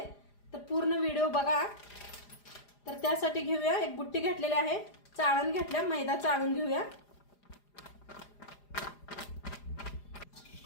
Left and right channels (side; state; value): right; late; 4.9 ms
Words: तर पूर्ण व्हिडिओ बघा। तर त्यासाठी घेऊया एक बुट्टी घेतलेली आहे, चाळण घेतल्या, मैदा चाळून घेऊया।